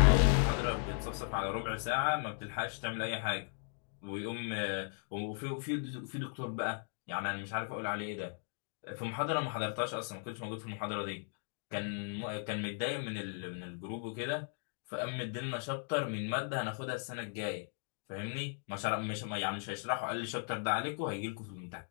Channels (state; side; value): silent; right; 53 dB below the other